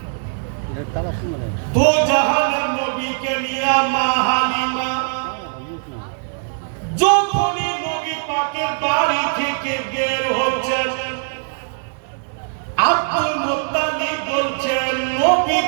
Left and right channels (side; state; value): left; silent; 63 dB below the other